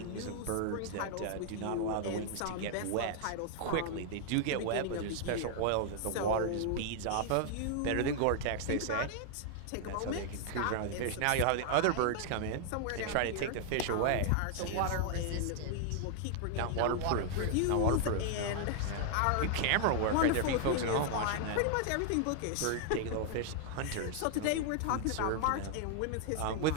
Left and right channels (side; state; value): both; different; correlation 0.00